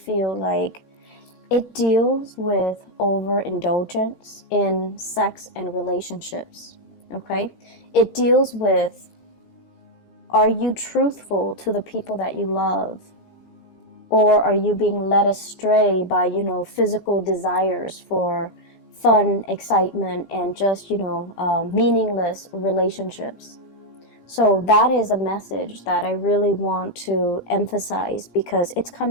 like it deals with overindulgence in sex and relationships, okay? It deals with, are you truthful to the people that you love? Or are you being led astray by, physical desires for fun, excitement, and just, meaningless relationships? So that is a message that I really want to emphasize because it's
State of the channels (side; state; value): right; late; 17 ms